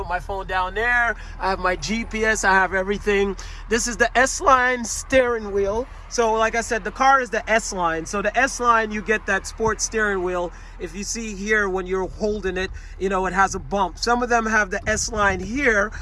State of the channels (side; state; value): both; identical; correlation 1.00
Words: my phone down there. I have my GPS, I have everything. This is the S-Line steering wheel. So like I said, the car is the S-Line. So the S-Line, you get that sports steering wheel. If you see here when you're holding it, you know, it has a bump. Some of them have the S-Line here,